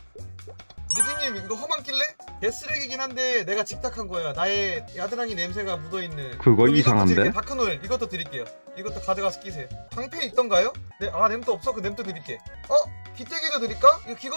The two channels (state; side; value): inverted; both; correlation -1.00